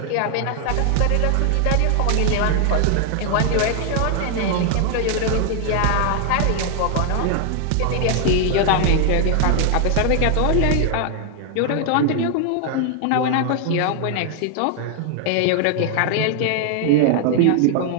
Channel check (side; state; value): both; different; correlation 0.00